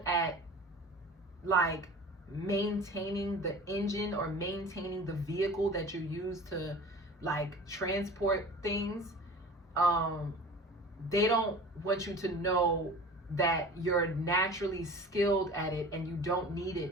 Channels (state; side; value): normal; both; correlation 0.39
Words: at like maintaining the engine, or maintaining the vehicle that you use to like transport things. They don't want you to know that you're naturally skilled at it and you don't